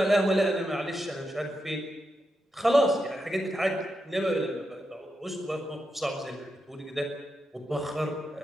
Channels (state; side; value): normal; both; correlation 0.86